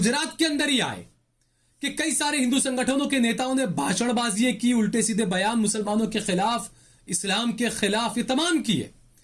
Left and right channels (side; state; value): both; identical; correlation 1.00